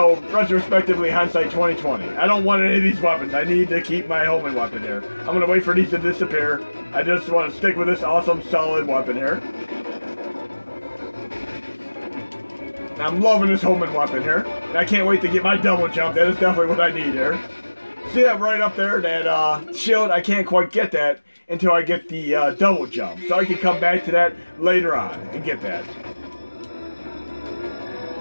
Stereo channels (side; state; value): both; inverted; correlation -1.00